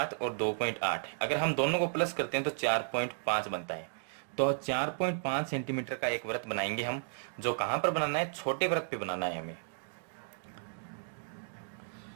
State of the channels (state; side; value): silent; left; digital silence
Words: और 2.8, अगर हम दोनों को प्लस करते हैं तो 4.5 बनता है। तो 4.5 सेंटीमीटर का एक वृत्त बनाएंगे हम, जो कहां पर बनाना है, छोटे वृत्त पे बनाना है हमें।